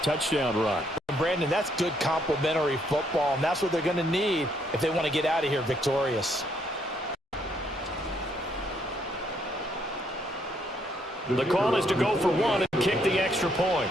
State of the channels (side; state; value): both; normal; correlation 0.71